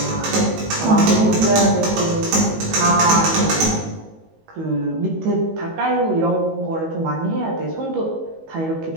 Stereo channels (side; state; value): left; late; 19 ms